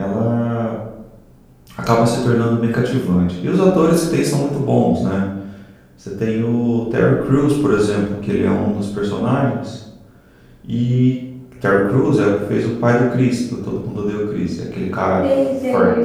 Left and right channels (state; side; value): identical; both; correlation 1.00